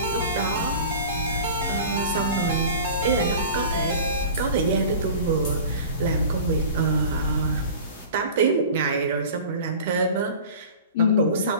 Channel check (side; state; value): both; inverted; correlation -0.39